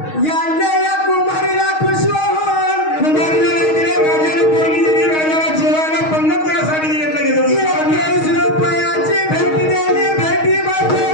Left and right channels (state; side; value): late; right; 6.4 ms